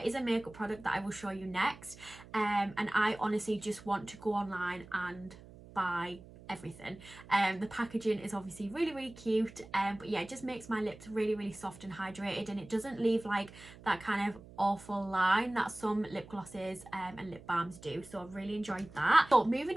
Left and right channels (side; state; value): right; noise; hum, 19 dB below the sound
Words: is a makeup product that I will show you next, and I honestly just want to go online and buy everything. The packaging is obviously really, really cute, but yeah, it just makes my lips really, really soft and hydrated, and it doesn't leave like that kind of awful line that some lip glosses and lip balms do. So I've really enjoyed that. So moving